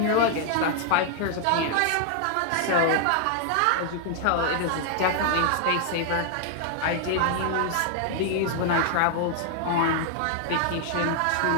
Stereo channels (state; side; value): different; both; correlation 0.00